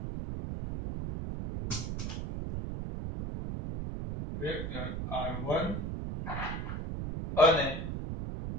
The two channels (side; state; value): right; noise; rumble, 4 dB below the sound